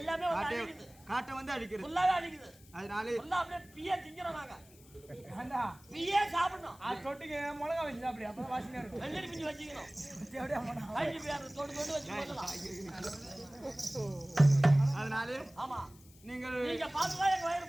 வந்து காட்டை அடிக்குது காட்டை வந்து அடிக்கிறது ஃபுல்லாவே அடிக்குது அதனால ஃபுல்லா அப்படியே பிய திங்கிறோம் நாங்க ஏண்டா பியே சாப்பிடணும் அது தொட்டுக்கு மிளகா வச்சு அப்படி அப்பதான் வாசனையா இருக்கும் வெள்ளரி பிஞ்சு வச்சுக்கணும் தேவடியா போனா வயிற்று பியாரு தொட்டு தொட்டு வச்சு போடலாம் அதனால ஆமா நீங்கள் நீங்க பார்த்துதான் எங்க வயிறு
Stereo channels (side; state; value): left; noise; hiss, 25 dB below the sound